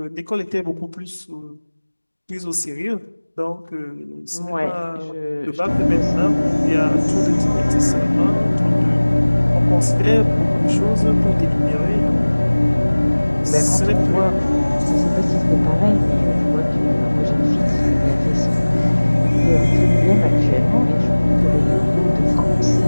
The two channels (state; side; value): inverted; both; correlation -1.00